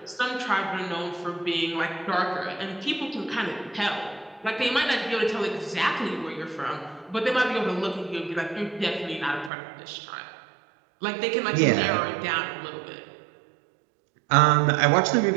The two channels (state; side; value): drops out; left; at 9.5 s